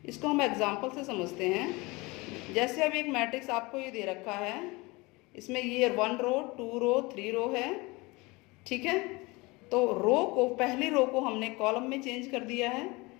इसको हम एग्जांपल से समझते हैं। जैसे अब एक मैट्रिक्स आपको ये दे रखा है, इसमें ये 1 रो 2 रो 3 रो है। ठीक है, तो पहली रो को हमने कॉलम में चेंज कर दिया है।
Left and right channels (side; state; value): right; quieter; 24.3 dB